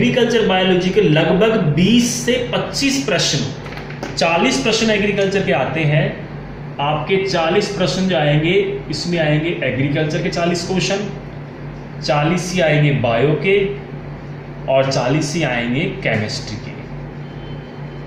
बायोलॉजी के लगभग 20 से 25 प्रश्न, 40 प्रश्न एग्रीकल्चर के आते हैं। आपके 40 प्रश्न जो आएंगे, इसमें आएंगे एग्रीकल्चर के 40 क्वेश्चन, 40 ही आएंगे बायो के, और 40 ही आएंगे केमिस्ट्री के।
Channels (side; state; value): both; identical; correlation 1.00